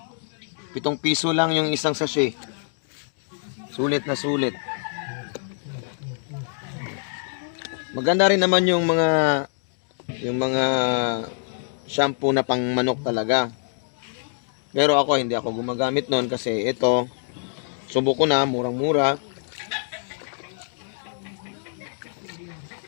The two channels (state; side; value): silent; right; digital silence